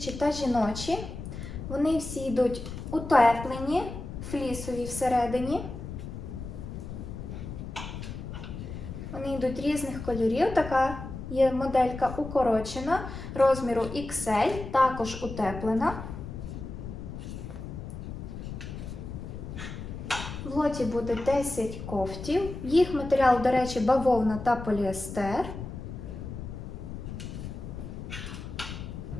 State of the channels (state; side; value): noise; left; rumble, 9 dB below the sound